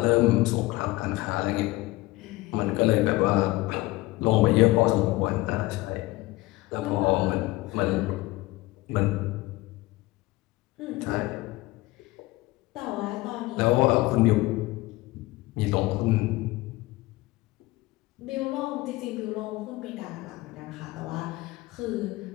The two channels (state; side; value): quieter; right; 20.0 dB